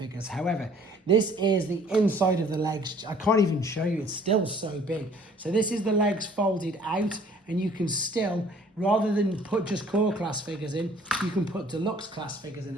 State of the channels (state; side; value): normal; both; correlation 0.55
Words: However, this is the inside of the legs. I can't even show you, it's still so big. So this is the legs folded out, and you can still, rather than put just core class figures in, you can put deluxe class figures in